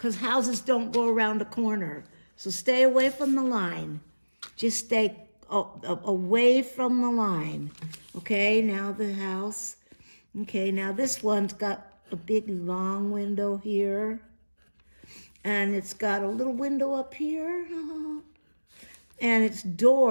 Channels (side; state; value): both; inverted; correlation -1.00